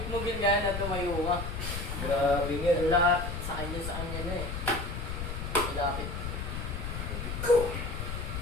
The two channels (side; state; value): left; noise; rumble, 5 dB below the sound